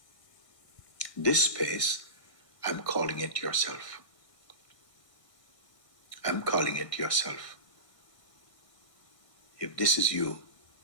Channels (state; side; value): late; right; 1.6 ms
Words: This space, I'm calling it yourself. I'm calling it yourself. If this is you,